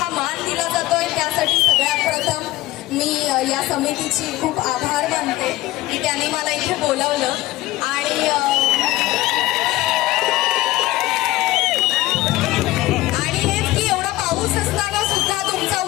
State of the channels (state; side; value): quieter; right; 17.6 dB